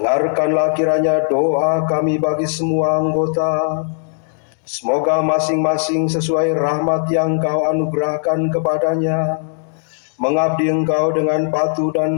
kiranya doa kami bagi semua anggota. Semoga masing-masing sesuai rahmat yang Kau anugerahkan kepadanya, mengabdi Engkau dengan patuh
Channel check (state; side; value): silent; right; digital silence